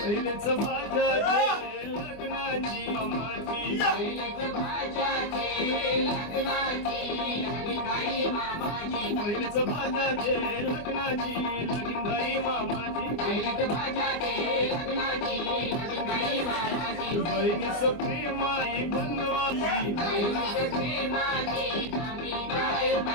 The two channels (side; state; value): right; late; 24 ms